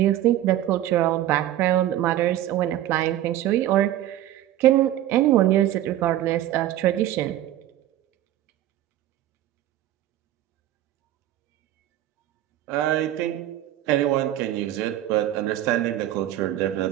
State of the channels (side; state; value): left; quieter; 13.2 dB